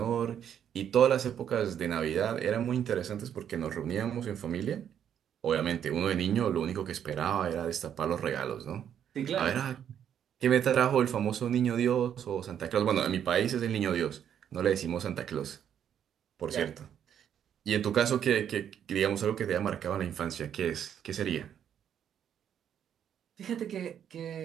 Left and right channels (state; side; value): quieter; left; 9.2 dB